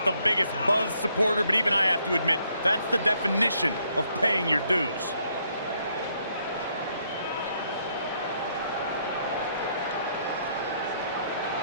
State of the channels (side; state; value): both; inverted; correlation -0.72